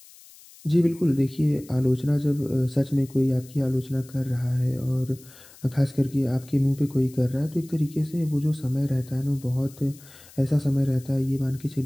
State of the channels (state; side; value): noise; left; hiss, 22 dB below the sound